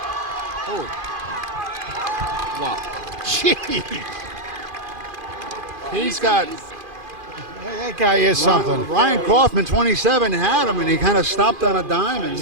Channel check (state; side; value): late; left; 2.5 ms